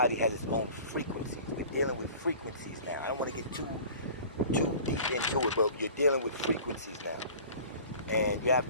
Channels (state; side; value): inverted; both; correlation -0.43